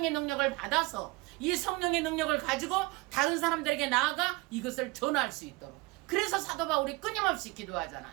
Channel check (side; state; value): left; quieter; 24.0 dB